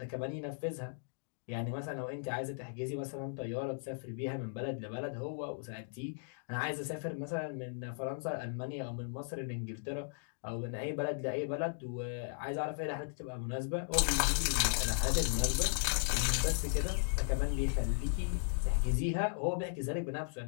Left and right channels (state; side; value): silent; right; digital silence